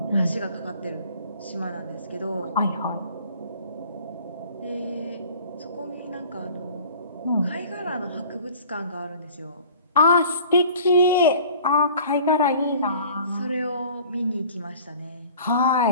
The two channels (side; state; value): both; inverted; correlation -0.47